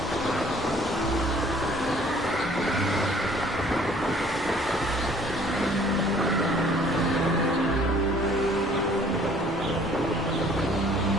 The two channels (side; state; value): both; normal; correlation 0.56